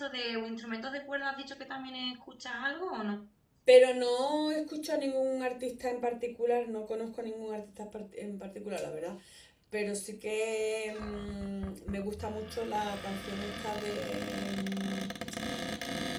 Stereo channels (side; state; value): both; identical; correlation 1.00